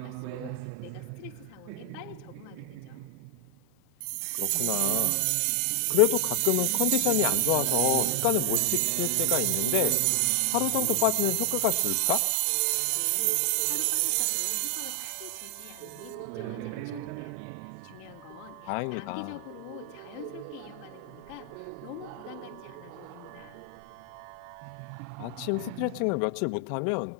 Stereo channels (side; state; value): both; different; correlation 0.00